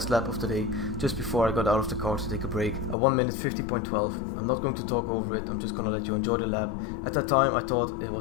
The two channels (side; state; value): right; drops out; at 3.0 s